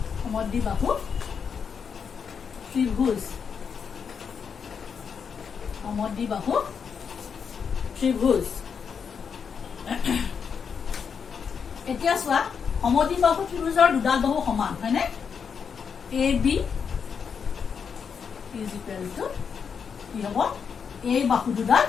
ত্ৰিভুজ এতিয়া চোৱা সমদ্বিবাহু ত্ৰিভুজৰ দুডাল বাহু সমান হয়নে A B is equal two কি হ'ব এই বাহু দুডাল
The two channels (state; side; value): quieter; right; 6.5 dB